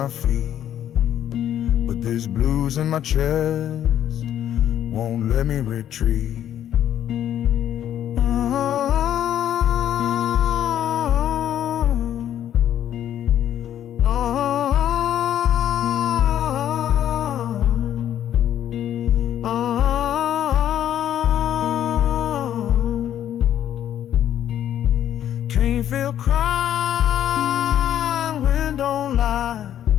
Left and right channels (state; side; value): quieter; right; 10.8 dB